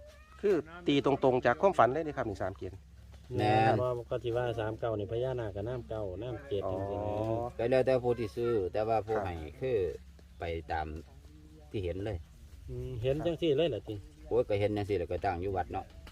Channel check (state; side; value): identical; both; correlation 1.00